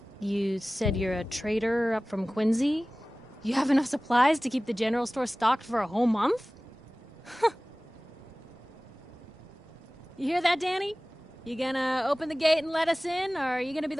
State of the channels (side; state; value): both; normal; correlation 0.98